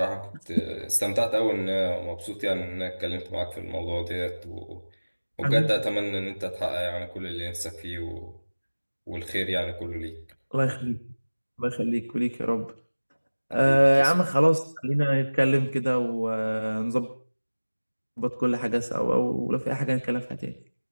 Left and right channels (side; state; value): both; inverted; correlation -1.00